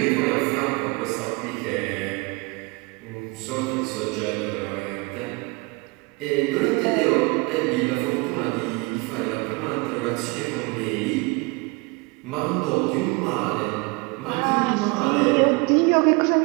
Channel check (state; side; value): quieter; left; 27.1 dB